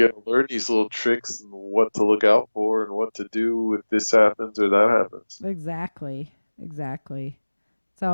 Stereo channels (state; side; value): inverted; both; correlation -1.00